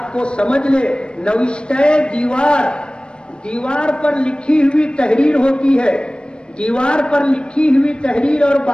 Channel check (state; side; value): late; right; 0.054 ms